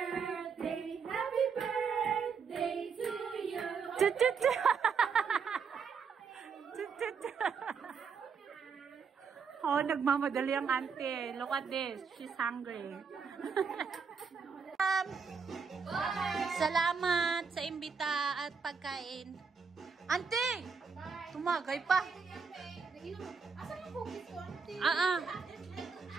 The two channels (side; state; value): left; quieter; 5.6 dB